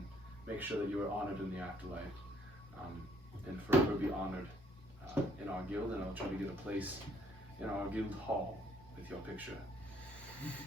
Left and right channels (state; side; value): normal; both; correlation 0.65